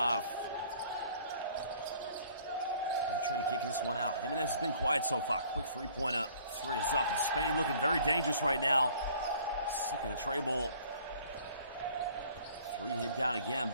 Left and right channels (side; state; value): both; inverted; correlation -0.55